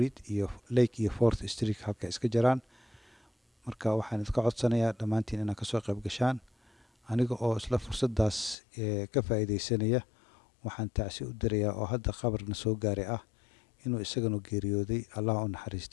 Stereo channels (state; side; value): drops out; right; at 8.6 s